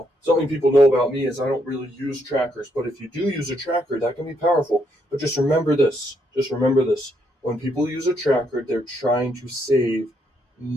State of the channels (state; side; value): normal; both; correlation 0.75